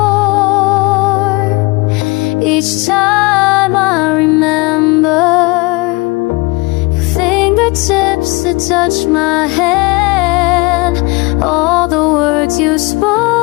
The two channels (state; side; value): quieter; right; 25.4 dB